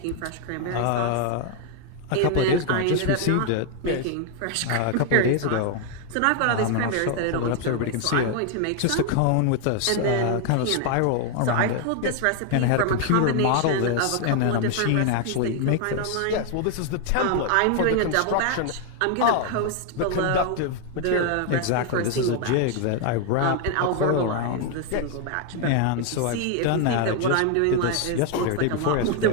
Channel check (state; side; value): different; both; correlation 0.00